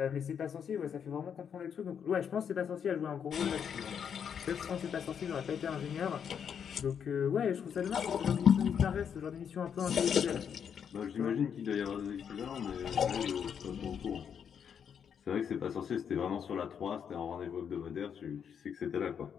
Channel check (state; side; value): quieter; right; 7.7 dB